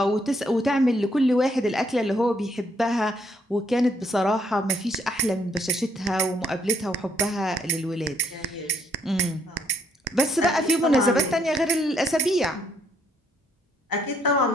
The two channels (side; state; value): both; normal; correlation 0.70